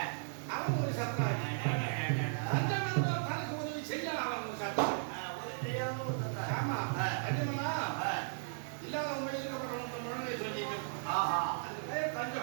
அவன் ஒரு சத்ராஜி. தஞ்சம் என்றால் தனக்கு உதவி செய்ய அவன் ஒரு சத்ராஜி. உதவி செய்யாம ஒரு சத்ராதி. ஆமா தஞ்சம்னா இல்லாத உண்மையில் இருக்கப்பட்ட முழங்கை சொல்லிட்டு அந்த பேர்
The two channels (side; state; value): left; silent; digital silence